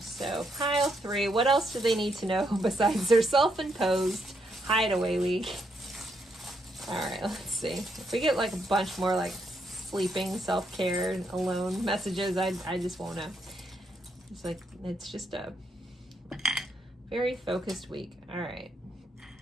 So pile 3, what else do they need to know besides their self-imposed hideaway week? All right, let's see. If we get like a bunch more like sleeping, self-care, alone messages, I just won't know. It's like, it's just a very focused week. All right.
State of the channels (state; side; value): normal; both; correlation 0.77